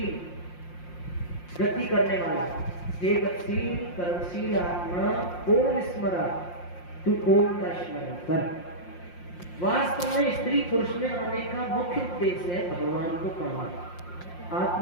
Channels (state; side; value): late; right; 5.7 ms